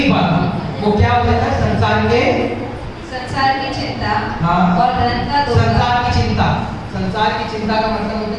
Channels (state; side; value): identical; both; correlation 1.00